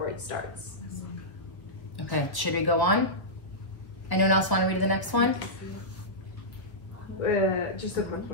it starts. Okay, should we go on? Anyone else want to read the next one? Just a quick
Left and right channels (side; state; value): right; late; 1.3 ms